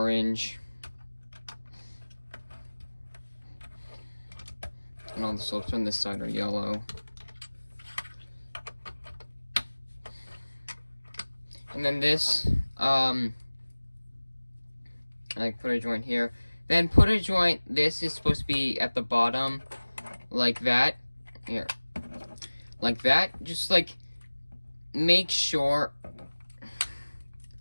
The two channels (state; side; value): inverted; both; correlation -1.00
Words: And all the slopes on this side are yellow. And then this, put a joint here. Then put a joint, this is supposed to be at the bottom, like that. Here. Like that. Just, make sure